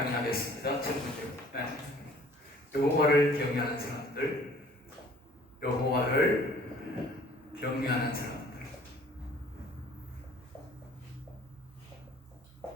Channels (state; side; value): normal; both; correlation 0.53